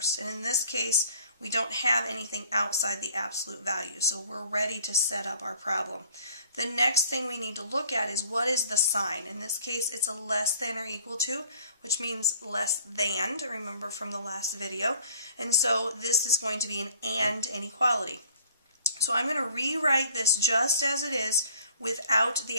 And in this case, we don't have anything outside the absolute value, so we're ready to set up our problem. The next thing we need to look at is what is the sign. In this case, it's a less than or equal to, which means less than, to remember from the last video. And so this is going to be an and inequality. So I'm going to rewrite this just as it is without the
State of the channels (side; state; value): both; inverted; correlation -0.54